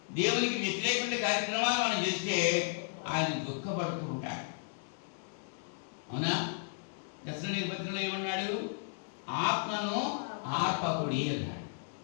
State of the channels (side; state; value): right; silent; digital silence